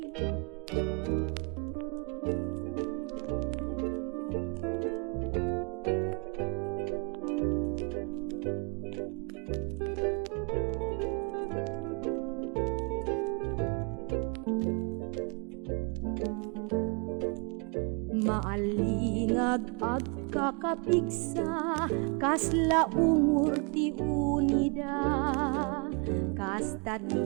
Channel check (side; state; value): left; quieter; 34.5 dB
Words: Maalingag agkakapigsa, kasla ungur ti unida. Kasta